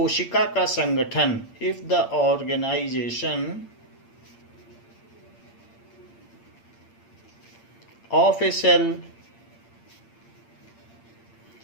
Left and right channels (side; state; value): right; late; 8.7 ms